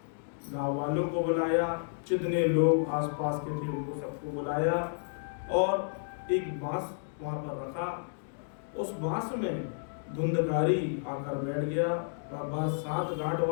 गांव वालों को बुलाया, जितने लोग आसपास के थे उनको सबको बुलाया और एक बांस वहां पर रखा। उस बांस में धुंधकारी आकर बैठ गया। वह बांस 7 गांठ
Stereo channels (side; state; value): right; silent; digital silence